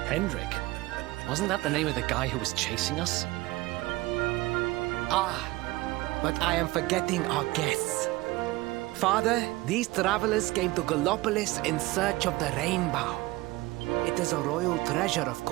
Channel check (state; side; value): quieter; left; 20.2 dB